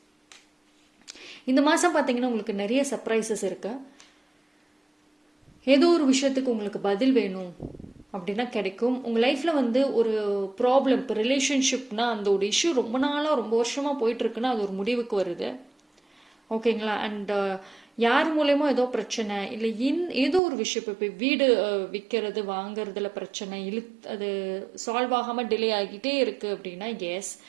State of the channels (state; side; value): drops out; left; at 20.4 s